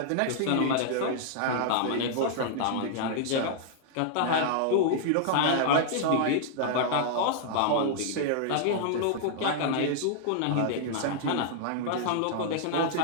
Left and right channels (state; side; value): different; both; correlation -0.01